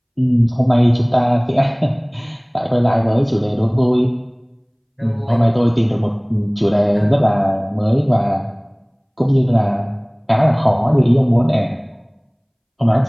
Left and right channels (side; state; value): both; identical; correlation 1.00